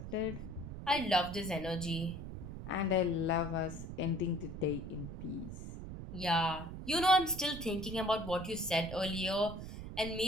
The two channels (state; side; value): noise; right; rumble, 9 dB below the sound